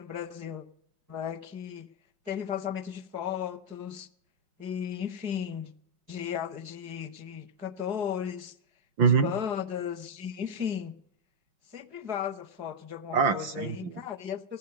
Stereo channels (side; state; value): left; late; 4.8 ms